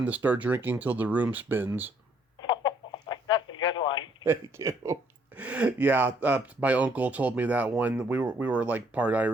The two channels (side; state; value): both; normal; correlation 0.66